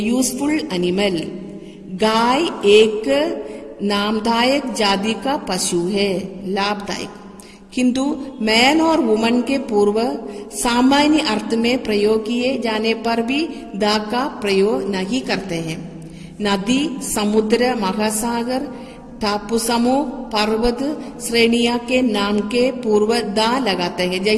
animal, गाय एक नामदायक जाति का पशु है, लाभदायक। किंतु मैन और वुमन के पूर्व सामान्य अर्थ में प्रयोग किए जाने पर भी द का प्रयोग नहीं करते हैं। नदी, समुद्र, महासागर, टापू समूह, पर्वत श्रेणियां के नाम के पूर्व द लगाते हैं।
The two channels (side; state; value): both; identical; correlation 1.00